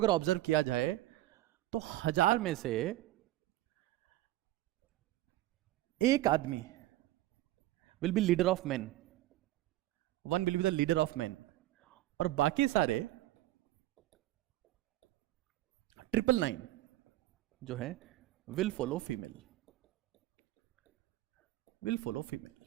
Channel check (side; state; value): left; quieter; 15.9 dB